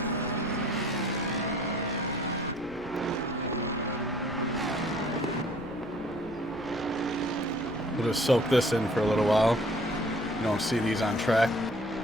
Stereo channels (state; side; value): noise; left; rumble, 20 dB below the sound